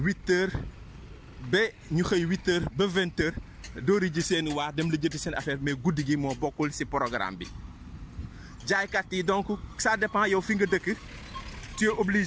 heures ba ñu xëy 8 heures ba 20 heures doori ji seen waa dem la jëti seen affaire mais guddi gi moo bokkul si programme bi jaaykat yi donc ça dépend yow fi nga dëkk tu es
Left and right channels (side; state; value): both; identical; correlation 1.00